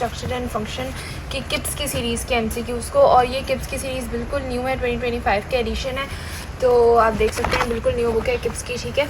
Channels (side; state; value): both; identical; correlation 1.00